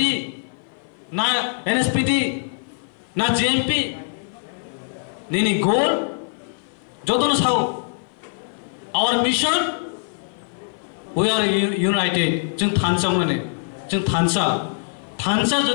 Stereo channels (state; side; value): silent; right; 57 dB below the other